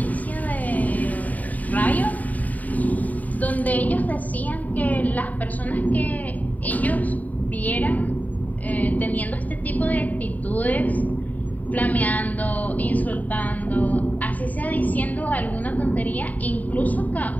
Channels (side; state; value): right; late; 0.075 ms